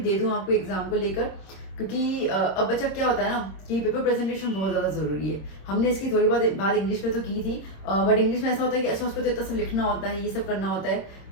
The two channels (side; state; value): right; late; 26 ms